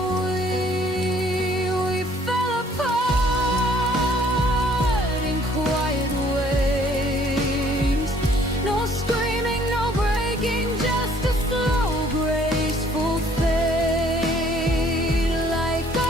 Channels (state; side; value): normal; both; correlation 0.60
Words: We fell apart in quiet ways. No screaming, no breaking, just a slow, graceful fade. Like